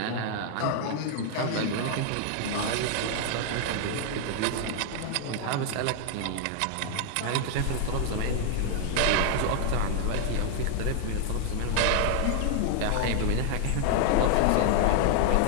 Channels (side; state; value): both; different; correlation 0.00